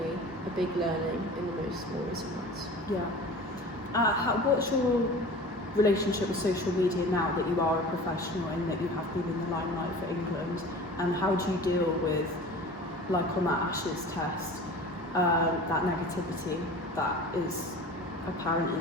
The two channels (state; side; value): normal; both; correlation 0.39